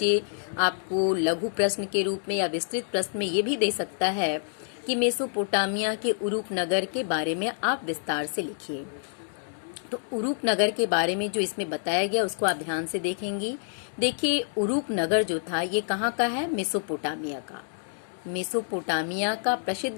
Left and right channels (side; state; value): right; silent; digital silence